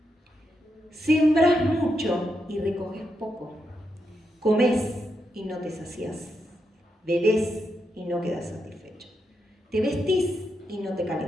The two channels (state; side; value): normal; both; correlation 0.83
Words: Sembrás mucho y recoges poco. Comés y no te saciás. Bebés y no quedas satisfecho. Te vestís y no te